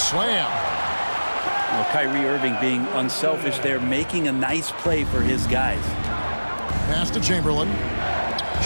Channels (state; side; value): inverted; both; correlation -1.00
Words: Well, Kyrie Irving being unselfish there, making a nice play for his guys. Pass to Chamberlain.